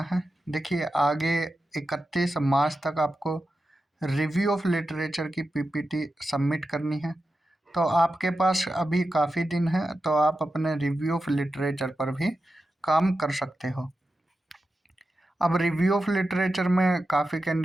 है? देखिए, आगे 31 मार्च तक आपको रिव्यू ऑफ लिटरेचर की पीपीटी सबमिट करनी है। तो आपके पास अभी काफ़ी दिन है, तो आप अपने रिव्यू ऑफ लिटरेचर पर भी काम कर सकते हो। अब रिव्यू ऑफ लिटरेचर में काफ़ी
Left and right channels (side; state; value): both; normal; correlation 0.91